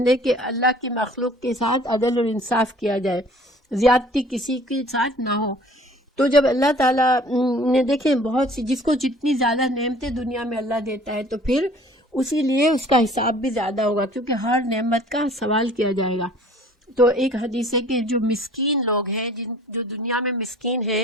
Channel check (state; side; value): normal; both; correlation 0.51